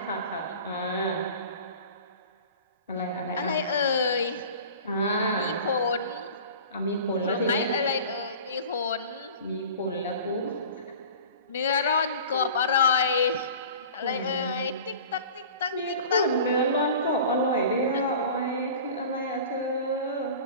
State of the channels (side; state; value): both; inverted; correlation -0.40